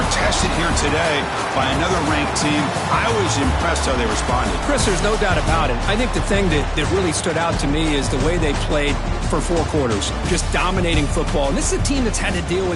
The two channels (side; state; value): both; identical; correlation 1.00